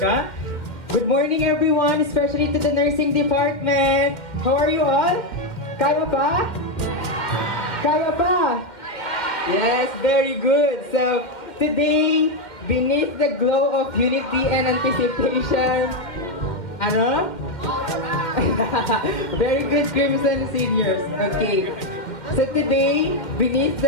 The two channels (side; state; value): right; late; 2.1 ms